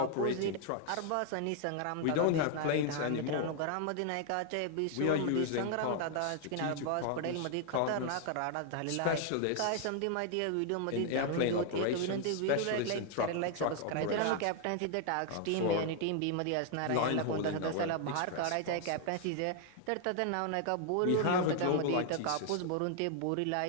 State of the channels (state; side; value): different; both; correlation 0.00